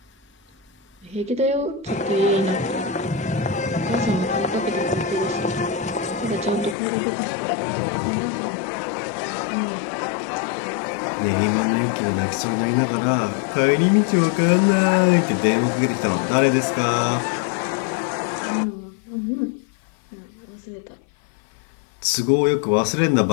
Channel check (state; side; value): drops out; right; at 6.8 s